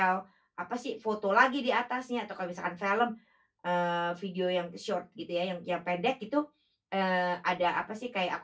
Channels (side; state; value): both; identical; correlation 1.00